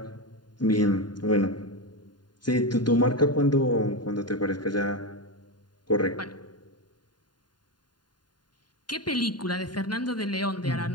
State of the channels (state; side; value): late; right; 0.70 ms